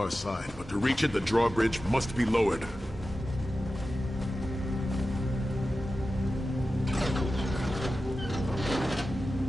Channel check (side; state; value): both; normal; correlation 0.93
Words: side, but to reach it, the drawbridge must be lowered.